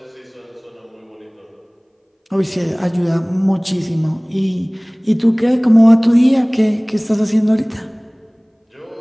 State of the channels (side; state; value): both; identical; correlation 1.00